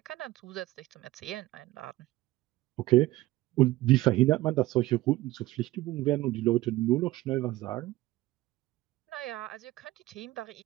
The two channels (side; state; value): left; quieter; 17.5 dB